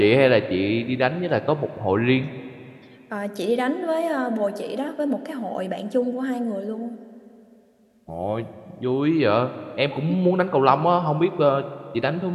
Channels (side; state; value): both; identical; correlation 1.00